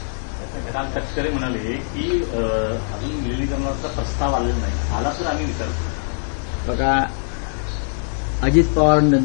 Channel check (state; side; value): silent; right; digital silence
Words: राम तटकरे म्हणाले की अजून विलिनीकरणाचा प्रस्ताव आलेला नाही, आला तर आम्ही विचार करू. बघा, अजित